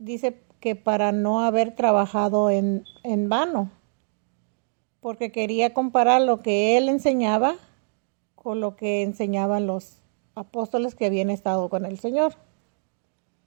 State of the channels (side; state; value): left; silent; digital silence